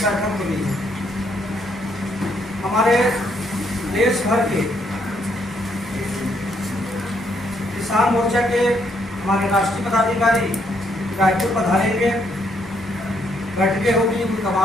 बैठक हुई है। हमारे देश भर के किसान मोर्चा के हमारे राष्ट्रीय पदाधिकारी रायपुर पधारेंगे, बैठकें होगी, उनका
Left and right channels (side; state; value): both; normal; correlation 0.72